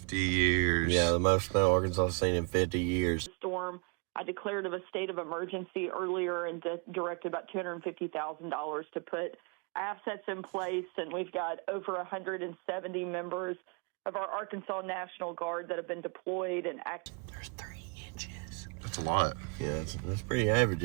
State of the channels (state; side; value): quieter; left; 33.6 dB